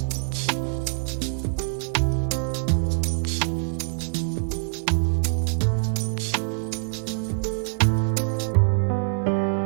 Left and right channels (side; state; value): left; silent; digital silence